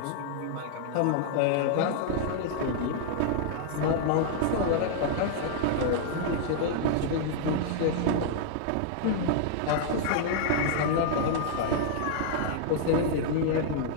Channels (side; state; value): both; different; correlation -0.01